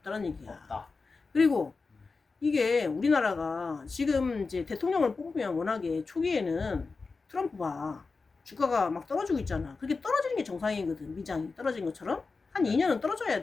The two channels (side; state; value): right; quieter; 4.2 dB